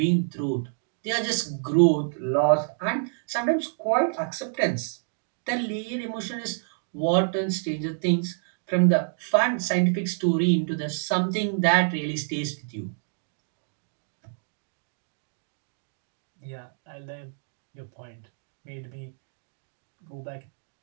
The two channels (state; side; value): silent; left; digital silence